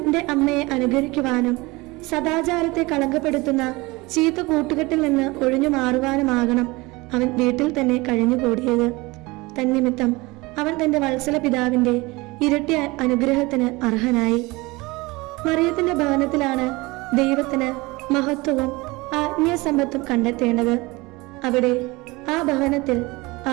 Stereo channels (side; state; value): left; quieter; 23.1 dB